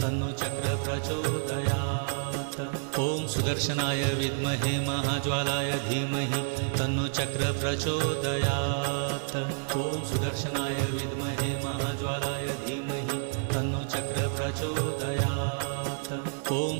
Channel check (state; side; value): silent; left; digital silence